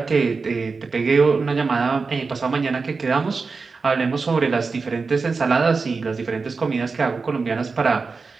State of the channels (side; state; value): left; quieter; 4.5 dB